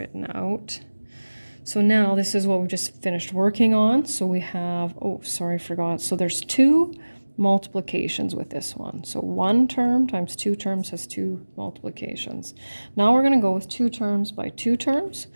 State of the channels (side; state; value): both; inverted; correlation -1.00